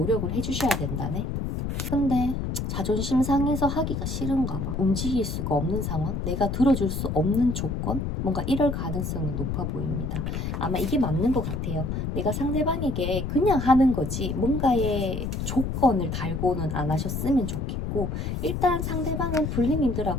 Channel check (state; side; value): noise; left; rumble, 2 dB below the sound